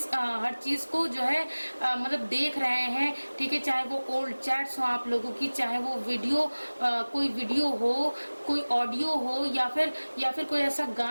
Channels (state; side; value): inverted; both; correlation -1.00